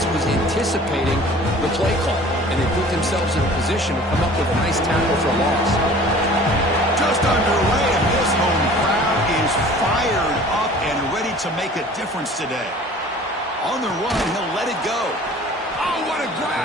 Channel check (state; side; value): normal; both; correlation 0.47